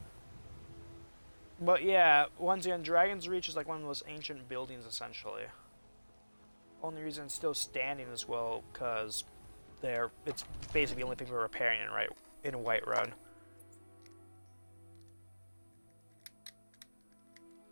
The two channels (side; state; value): both; inverted; correlation -1.00